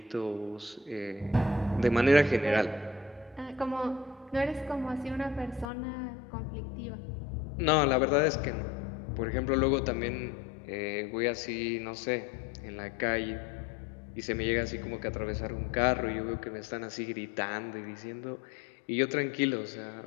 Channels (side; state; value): right; drops out; at 5.7 s